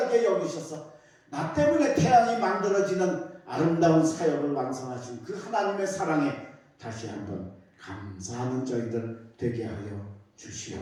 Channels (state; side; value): identical; both; correlation 1.00